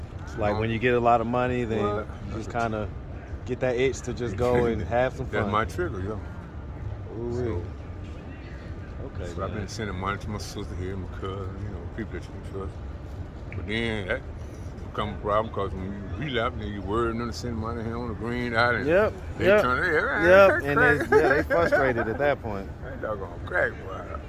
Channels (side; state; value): both; identical; correlation 1.00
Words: It's like when you get a lot of money, then you just kind of get that itch to just go and have some fun. That's my trigger, yo. Ooh, okay. So I've been sending money to my sister here, my cousin, people that you can trust. But then that become a problem because when you relapse, then you worry them to send money here on the green out, and they turn their and they frustrated at that point. That doggone crack, boy.